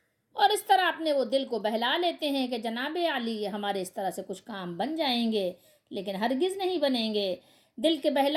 اور اس طرح اپنے وہ دل کو بہلا لیتے ہیں کہ جناب علی ہمارے اس طرح سے کچھ کام بن جائیں گے، لیکن ہرگز نہیں بنیں گے۔ دل کے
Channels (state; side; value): identical; both; correlation 1.00